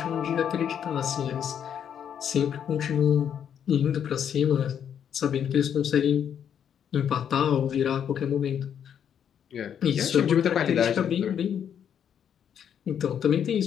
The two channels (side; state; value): right; quieter; 8.7 dB